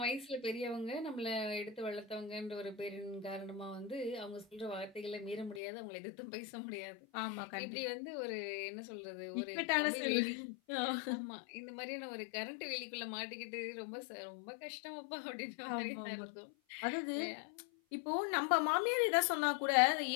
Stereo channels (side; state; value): right; drops out; at 5.6 s